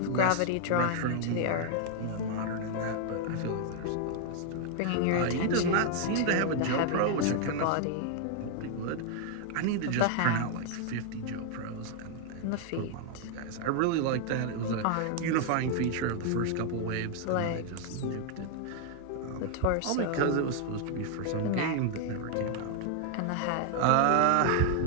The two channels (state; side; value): different; both; correlation 0.00